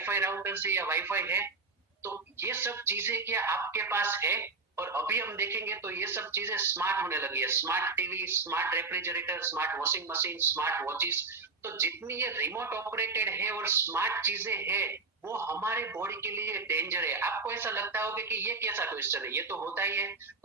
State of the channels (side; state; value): left; quieter; 4.1 dB